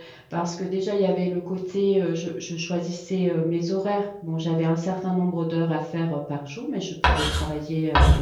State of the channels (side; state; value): both; identical; correlation 1.00